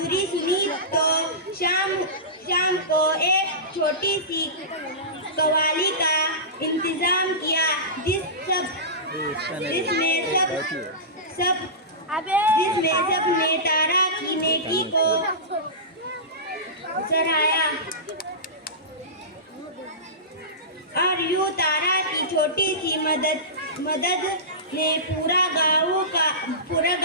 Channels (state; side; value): normal; both; correlation -0.19